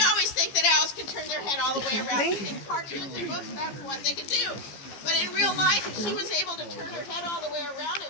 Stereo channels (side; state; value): right; late; 15 ms